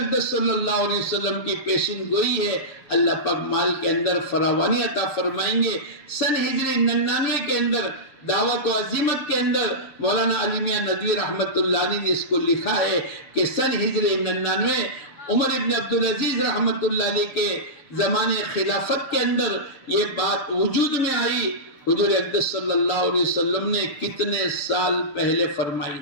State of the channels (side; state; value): right; late; 6.9 ms